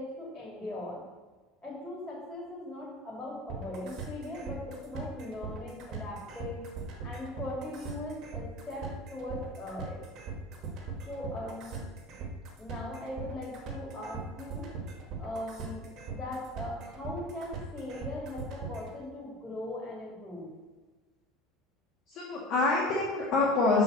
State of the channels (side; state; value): both; normal; correlation 0.35